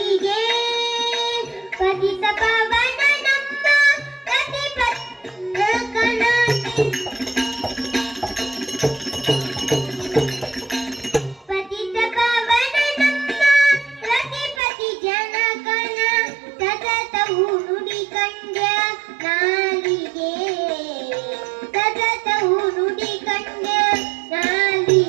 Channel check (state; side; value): drops out; left; at 14.6 s